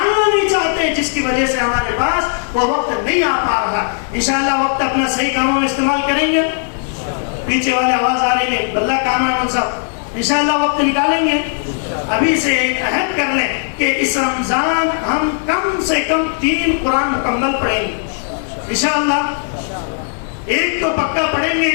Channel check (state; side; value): silent; right; 63 dB below the other